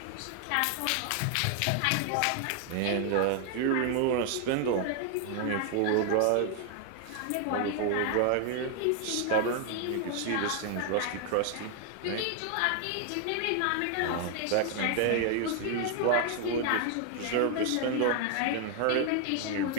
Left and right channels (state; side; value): different; both; correlation 0.00